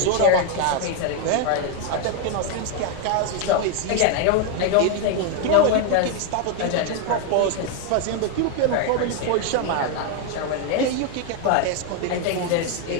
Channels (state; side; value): different; both; correlation 0.01